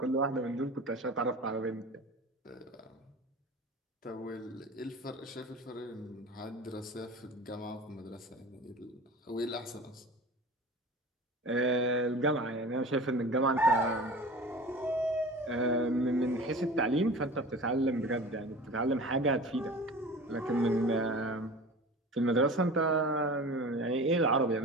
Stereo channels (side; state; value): both; normal; correlation 0.37